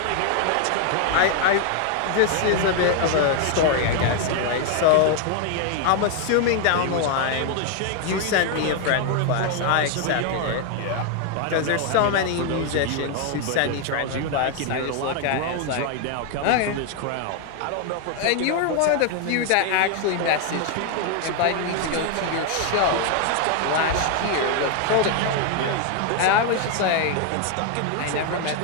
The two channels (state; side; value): different; both; correlation 0.00